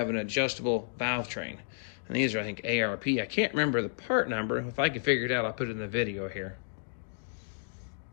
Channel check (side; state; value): right; silent; digital silence